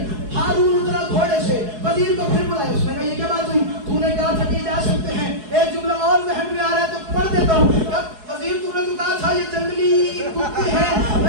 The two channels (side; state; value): left; late; 4.7 ms